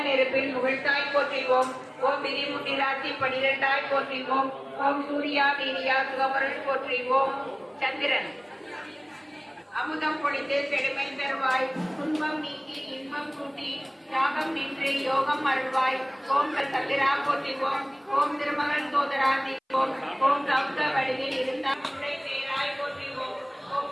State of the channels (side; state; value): both; identical; correlation 1.00